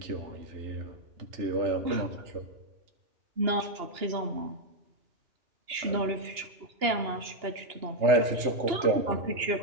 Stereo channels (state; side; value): late; left; 2.9 ms